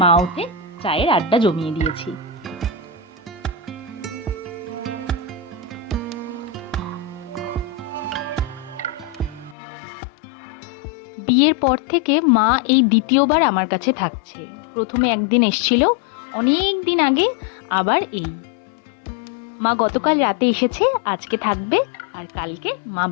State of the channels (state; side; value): drops out; right; at 9.6 s